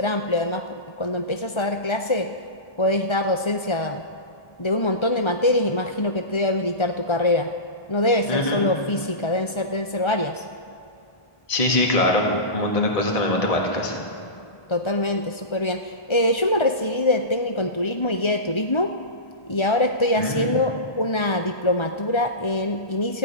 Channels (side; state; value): right; late; 1.3 ms